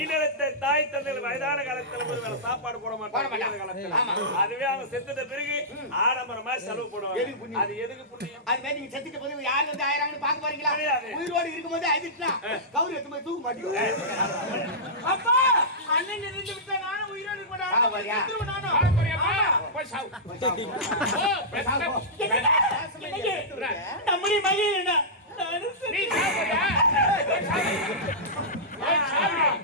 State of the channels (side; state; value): both; normal; correlation -0.16